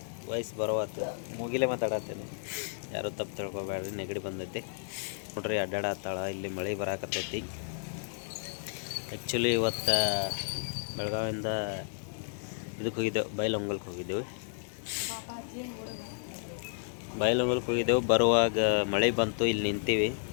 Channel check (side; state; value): right; silent; digital silence